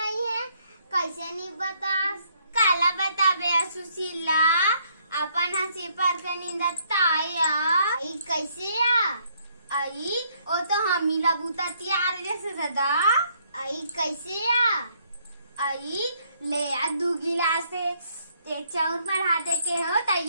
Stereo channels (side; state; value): both; inverted; correlation -0.68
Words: है, कैसे नहीं बता? काला बताबे सुशीला अपन हंसी पर के नींदताया कैसे आई ओ तो हमीला बूता तैयार जैसे दादा आई कैसे आई ले आ 2 गिलास एक चाउर बढ़ाते के हो तो